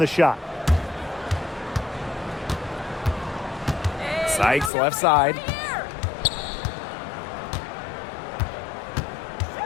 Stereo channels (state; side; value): drops out; right; at 4.7 s